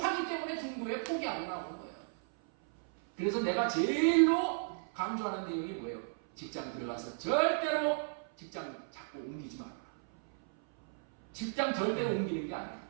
때문에 중도에 포기하고 나오는 거예요. 그래서 내가 제일로 강조하는 내용이 뭐예요? 직장 들어가서 절대로 직장 자꾸 옮기지 마라. 직장 절대로 옮기는 게 아니에요.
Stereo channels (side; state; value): left; silent; 55 dB below the other